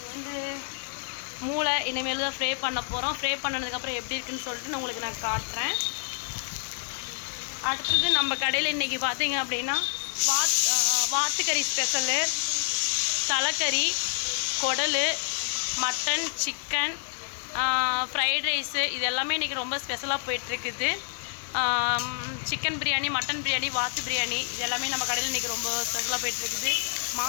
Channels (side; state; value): right; silent; digital silence